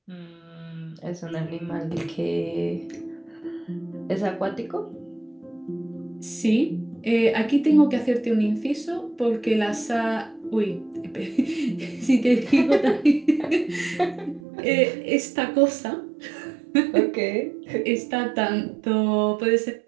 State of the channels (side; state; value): left; drops out; at 14.4 s